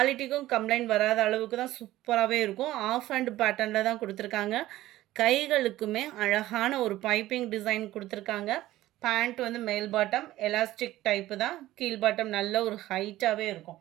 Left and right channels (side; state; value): left; quieter; 15.6 dB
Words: கம்ப்ளைண்ட் வராத அளவுக்கு தான் சூப்பராகவே இருக்கும். ஆஃப் ஹேண்ட் பேட்டர்னில் தான் கொடுத்துருக்காங்க. கைகளுக்குமே அழகான ஒரு பைப்பிங் டிசைன் கொடுத்துருக்காங்க. பேண்ட் வந்து மேல் பாட்டம் எலாஸ்டிக் டைப்பு தான். கீழ் பாட்டம் நல்ல ஒரு ஹைட்டாகவே